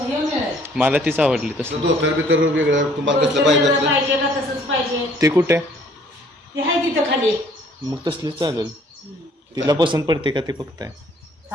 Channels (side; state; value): both; normal; correlation 0.59